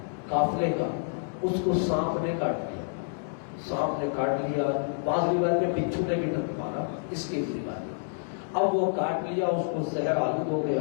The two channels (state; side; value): silent; right; digital silence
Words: قافلے کا، اس کو سانپ نے کاٹ لیا. سانپ نے کاٹ لیا، بعض روایت میں بچھو نے بھی مارا، اس کی روایت. اب وہ کاٹ لیا، اس کو زہر آلود ہو